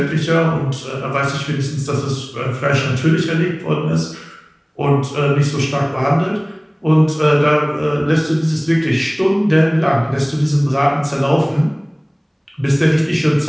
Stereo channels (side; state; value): both; identical; correlation 1.00